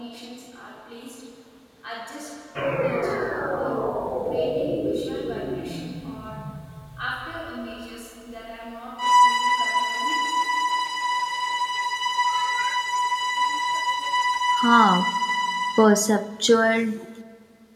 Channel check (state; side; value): identical; both; correlation 1.00